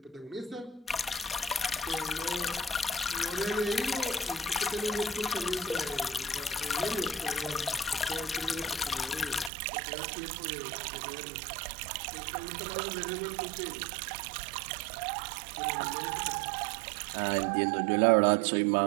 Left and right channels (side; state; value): left; drops out; at 9.5 s